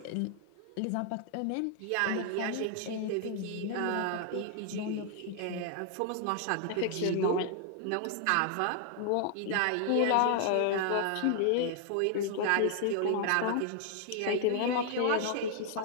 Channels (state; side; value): different; both; correlation 0.00